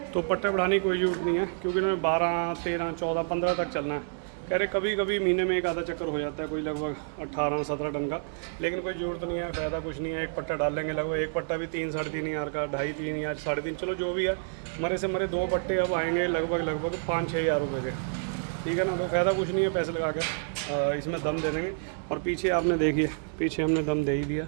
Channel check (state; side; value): silent; left; 59 dB below the other